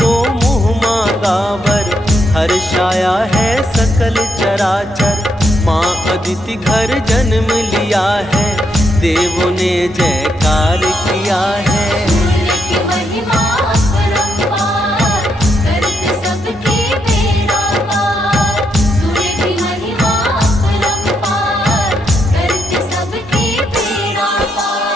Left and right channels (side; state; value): both; normal; correlation 0.79